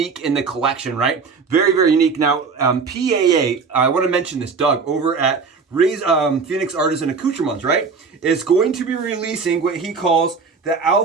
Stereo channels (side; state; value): left; quieter; 5.1 dB